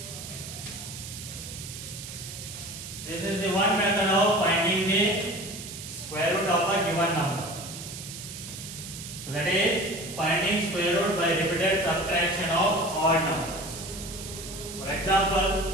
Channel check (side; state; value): right; noise; hiss, 10 dB below the sound